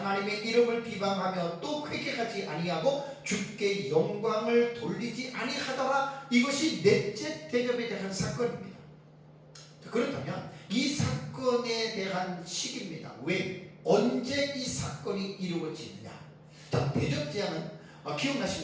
이름을 비방하며 또 회개하지 아니하고 주께 영광을 돌리지 아니하더라. 이것이 넷째 대접에 대한 사건입니다. 그렇다면 이 사건에 대한 시기입니다. 왜? 언제 이 사건이 이루어지느냐? 자, 대접 재앙은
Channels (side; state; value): both; identical; correlation 1.00